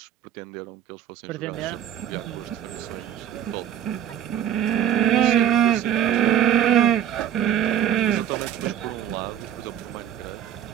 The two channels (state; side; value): quieter; left; 10.0 dB